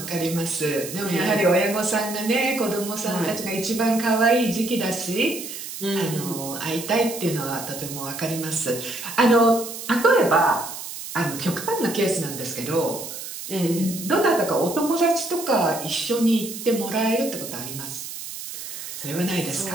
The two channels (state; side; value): noise; right; hiss, 9 dB below the sound